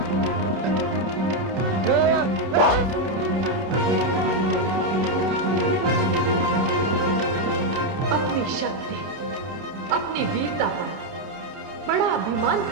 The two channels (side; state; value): left; late; 27 ms